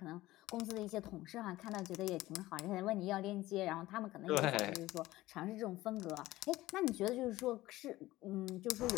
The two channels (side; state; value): right; quieter; 17.3 dB